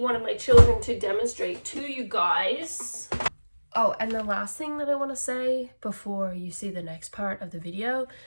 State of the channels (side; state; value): both; inverted; correlation -1.00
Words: of my children to demonstrate to you guys. Oh, and the last thing that I want to say before you see the next part of the video,